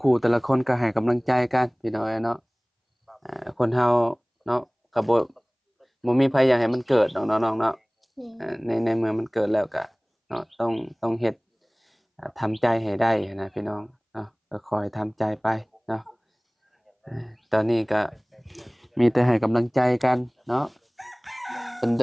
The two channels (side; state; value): both; identical; correlation 1.00